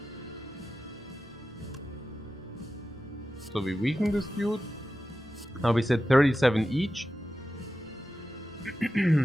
So we weaken this dude. Now we said 37 each.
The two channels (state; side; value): normal; both; correlation 0.93